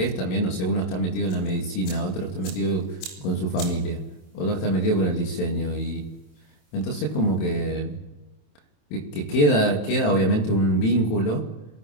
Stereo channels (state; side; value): late; right; 27 ms